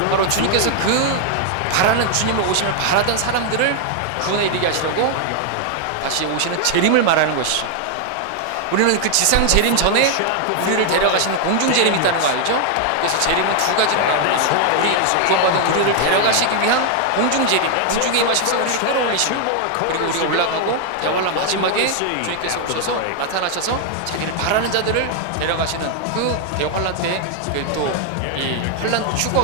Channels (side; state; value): both; different; correlation 0.00